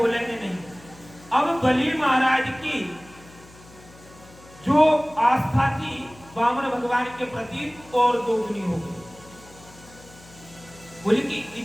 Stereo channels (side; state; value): left; noise; hum, 23 dB below the sound